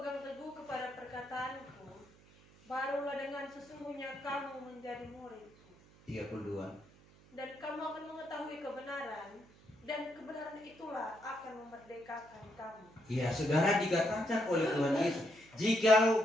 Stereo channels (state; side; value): noise; right; hum, 25 dB below the sound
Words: teguh kepada perkataanku, barulah dengan sesungguhnya kamu menjadi muridku. 32. Dan kamu akan mengetahui kebenaran, dan kebenaran itulah akan memerdekakan kamu." Ya, saudara, dikatakan oleh Tuhan Yesus,